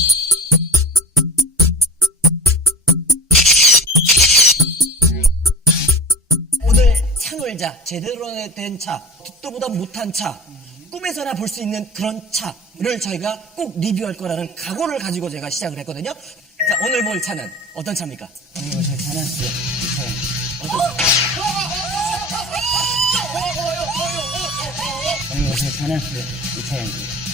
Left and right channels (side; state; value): both; normal; correlation 0.34